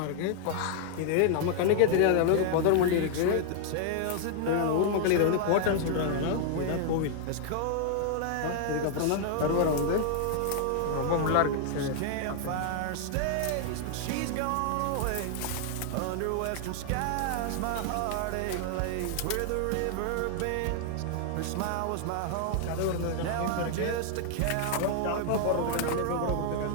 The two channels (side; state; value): both; different; correlation 0.00